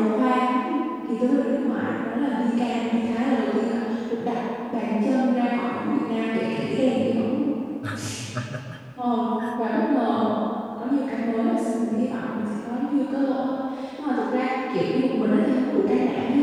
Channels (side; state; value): both; identical; correlation 1.00